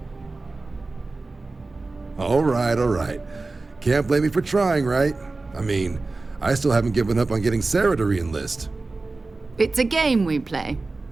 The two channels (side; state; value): left; quieter; 3.5 dB